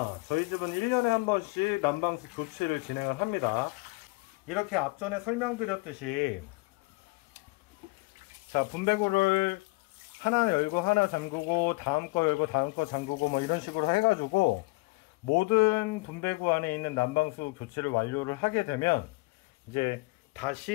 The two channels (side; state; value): right; quieter; 25.4 dB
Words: 저희 집은 1년에 한 번씩 난방수 교체를 진행을 합니다. 이렇게 앞전에 설명드렸듯이, 자, 분배구를 하나 열고 하나 잠그고 다음 거 열고 다음 거 잠그고 뭐 이런 식으로 해가지고 모든 분배구 안에 있는 난방수 교체를 완료를 하게 되면 이제